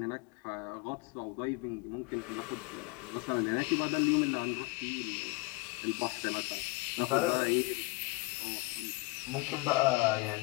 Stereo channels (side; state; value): right; quieter; 24.9 dB